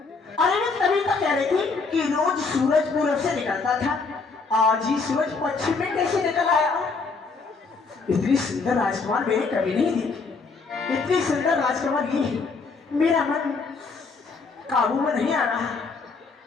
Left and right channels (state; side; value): quieter; right; 4.4 dB